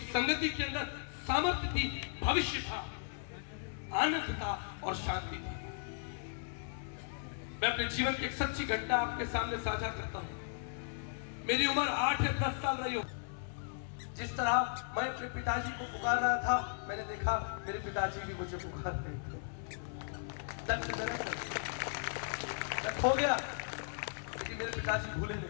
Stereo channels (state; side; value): silent; right; digital silence